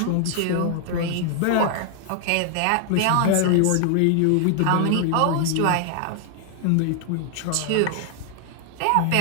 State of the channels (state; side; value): different; both; correlation 0.00